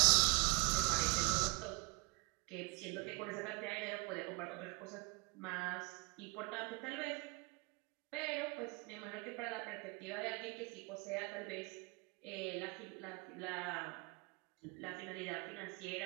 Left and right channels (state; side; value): quieter; left; 26.6 dB